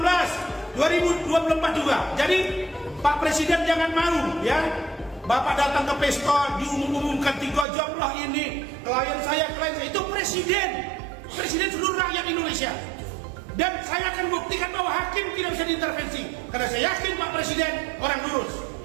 2024 juga. Jadi Pak Presiden jangan malu ya. Bapak datang ke pesta diumumkan 3 jam lah ini klien saya itu presiden seluruh rakyat Indonesia. Dan saya akan buktikan bahwa hakim tidak bisa diintervensi karena saya yakin Pak Presiden orang lurus.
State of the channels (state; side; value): drops out; left; at 7.7 s